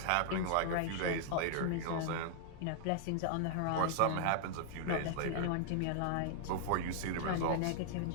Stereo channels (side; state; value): both; different; correlation -0.01